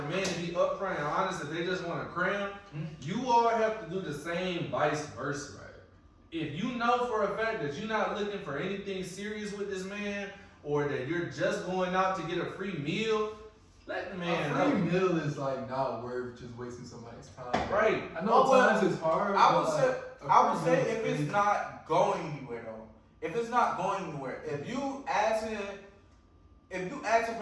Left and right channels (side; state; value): both; identical; correlation 1.00